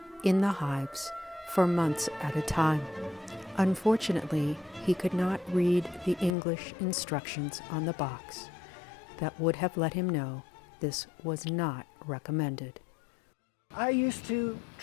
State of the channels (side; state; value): right; drops out; at 6.3 s